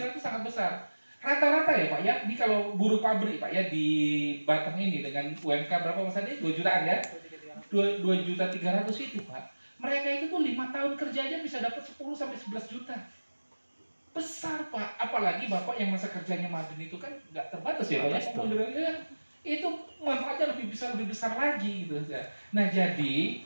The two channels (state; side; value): inverted; both; correlation -1.00